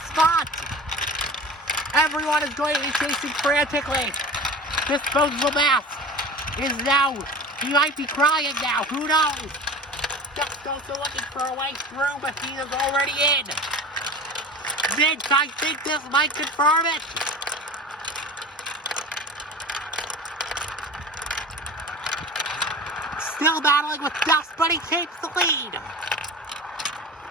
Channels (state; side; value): normal; both; correlation 0.35